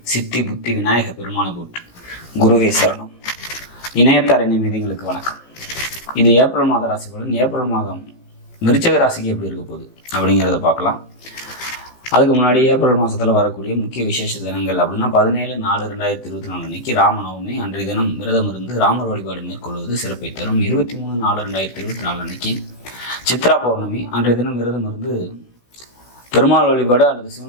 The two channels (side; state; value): right; late; 16 ms